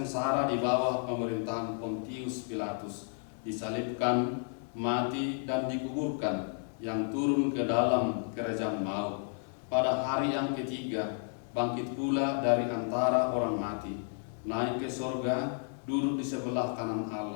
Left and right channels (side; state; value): right; silent; 56 dB below the other